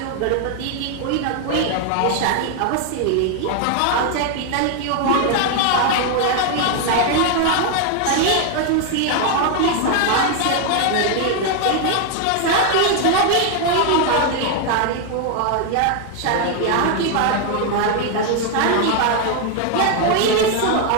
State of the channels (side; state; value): both; different; correlation 0.00